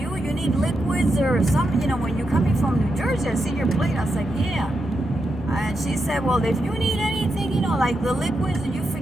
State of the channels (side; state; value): both; normal; correlation 0.85